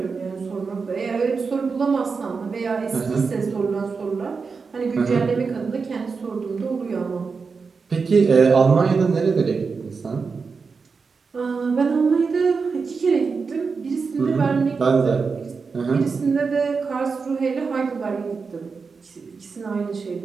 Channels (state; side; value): quieter; left; 5.0 dB